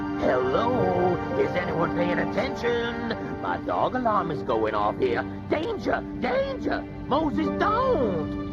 Hello? Is anyone paying attention? My dog alarm is going off here. Danger! Danger! Moses, don't!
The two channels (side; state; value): both; identical; correlation 1.00